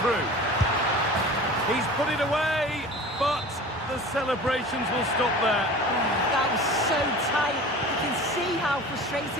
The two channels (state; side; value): normal; both; correlation 0.39